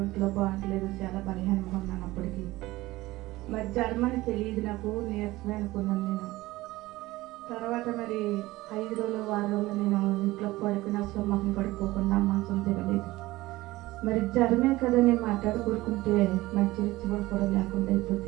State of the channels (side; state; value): left; quieter; 18.6 dB